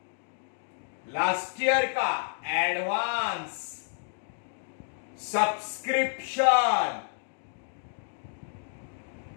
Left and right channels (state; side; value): silent; right; digital silence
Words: लास्ट ईयर का advance subscription,